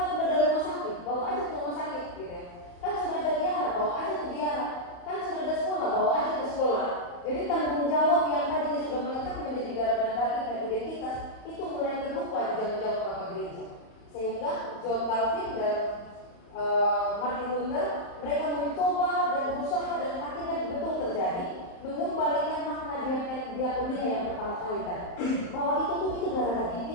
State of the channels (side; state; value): right; late; 35 ms